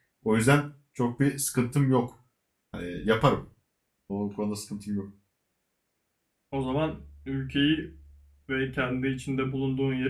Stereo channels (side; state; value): both; identical; correlation 1.00